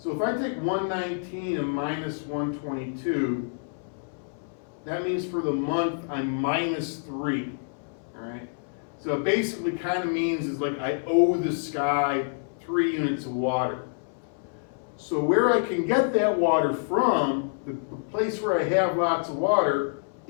if I take 119 and minus 122, that means for the month I'm minus 3. All right, so it basically kind of means is like I owe the sky 3 units of water. So where I can get that water from, the place where I have lots of water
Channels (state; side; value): silent; right; 60 dB below the other